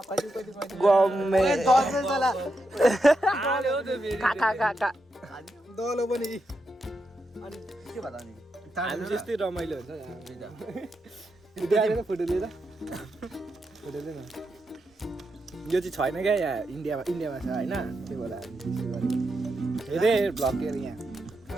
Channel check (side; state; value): both; normal; correlation 0.85